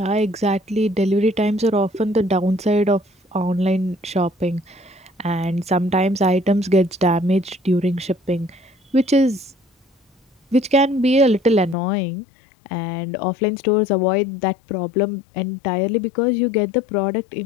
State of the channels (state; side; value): drops out; right; at 11.8 s